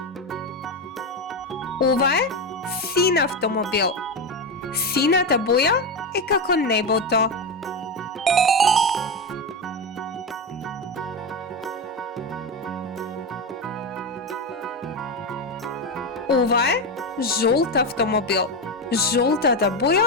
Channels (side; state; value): both; normal; correlation 0.13